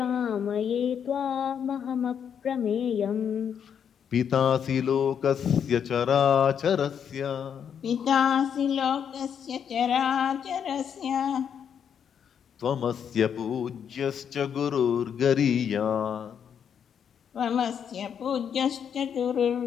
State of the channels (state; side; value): quieter; right; 8.0 dB